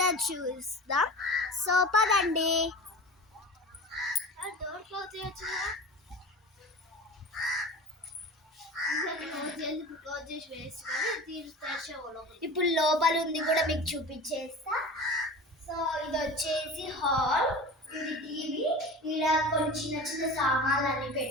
చూస్తాం. సో పదండి. డోర్ క్లోజ్ చేయొచ్చు. ఇప్పుడు లోపల ఉంది కూడా మీకు చూపించేస్తా. సో ఇది వచ్చేసి హాల్, ఇది టీవీ, ఇలా కొన్ని చిన్న చిన్న సామాన్లు అన్ని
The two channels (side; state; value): both; normal; correlation 0.35